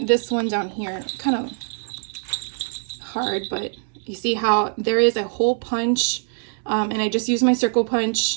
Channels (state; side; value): silent; left; 63 dB below the other